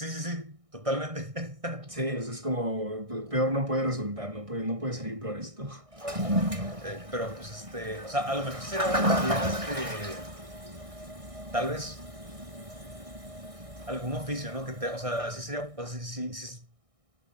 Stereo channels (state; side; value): late; left; 1.6 ms